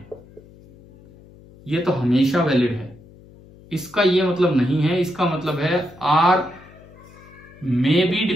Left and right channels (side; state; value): left; noise; hum, 23 dB below the sound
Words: ये तो हमेशा valid है। इसका ये मतलब नहीं है, इसका मतलब है R may be